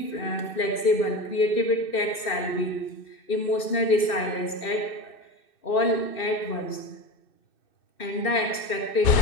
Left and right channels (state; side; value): late; right; 2.6 ms